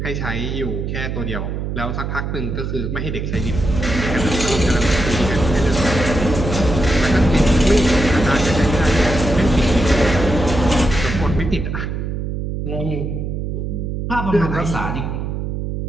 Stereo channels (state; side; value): noise; right; hum, 3 dB below the sound